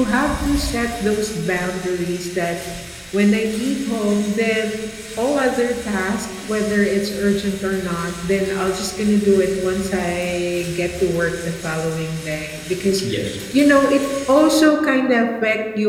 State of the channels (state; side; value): identical; both; correlation 1.00